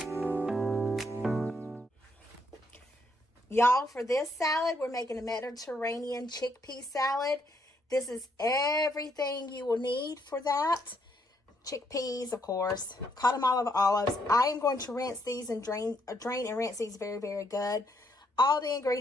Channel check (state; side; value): normal; both; correlation 0.73